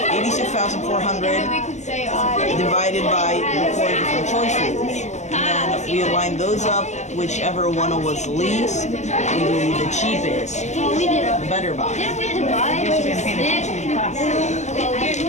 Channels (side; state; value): right; late; 0.34 ms